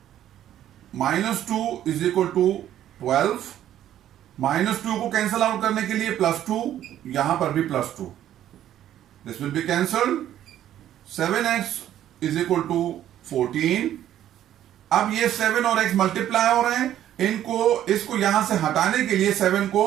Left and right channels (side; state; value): left; quieter; 11.7 dB